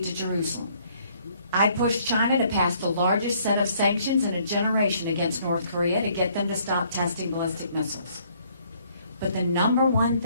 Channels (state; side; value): inverted; both; correlation -0.64